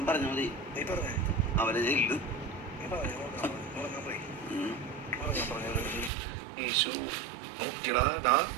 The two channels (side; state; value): left; drops out; at 6.1 s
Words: പറഞ്ഞ മതി. നീ പറഞ്ഞേ അവരെ ചെയ്യില്ല. നീ പറഞ്ഞു ഉറങ്ങാൻ പോയി ഉറങ്ങാൻ പറഞ്ഞത് ഈശോ നോക്കിയടാ.